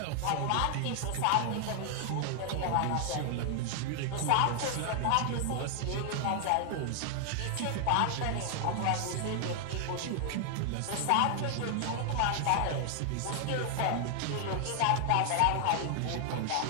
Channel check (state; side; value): different; both; correlation 0.00